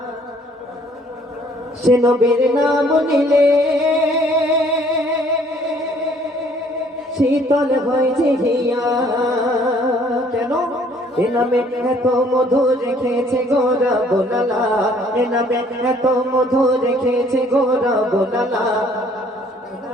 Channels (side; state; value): both; normal; correlation 0.60